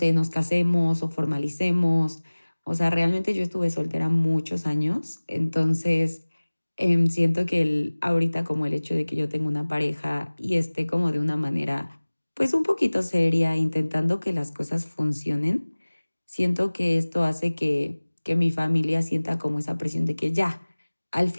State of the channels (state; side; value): inverted; both; correlation -1.00